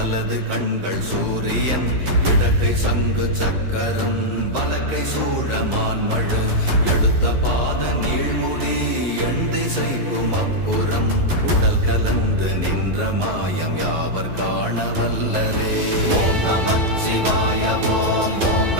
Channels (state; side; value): late; left; 11 ms